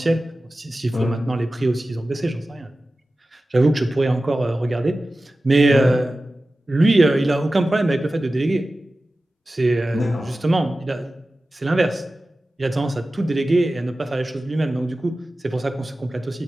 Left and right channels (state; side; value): normal; both; correlation 0.95